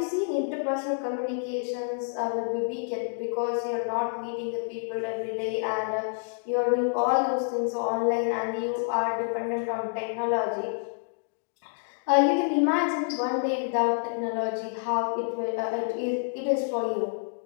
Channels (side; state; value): right; silent; digital silence